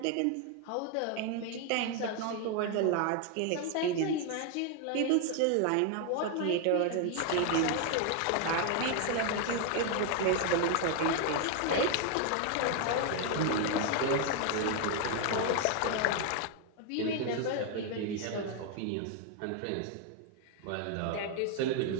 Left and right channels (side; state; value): both; different; correlation 0.01